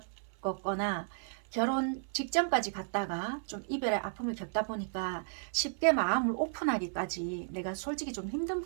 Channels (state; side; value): silent; left; 55 dB below the other